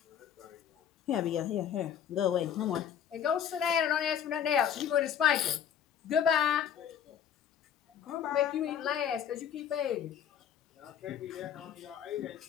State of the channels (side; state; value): right; quieter; 8.9 dB